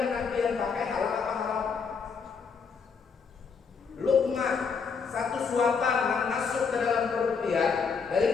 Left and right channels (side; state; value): right; quieter; 5.6 dB